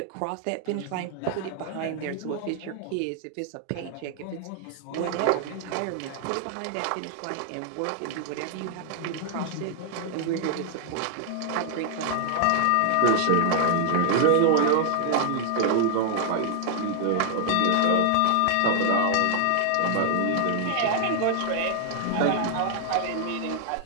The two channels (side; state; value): both; different; correlation 0.00